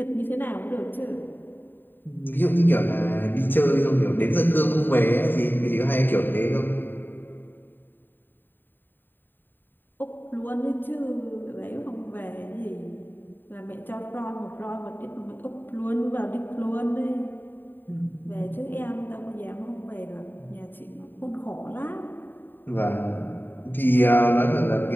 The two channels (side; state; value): right; late; 0.093 ms